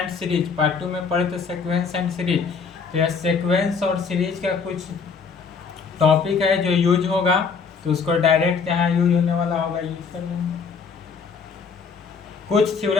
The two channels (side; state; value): right; quieter; 5.5 dB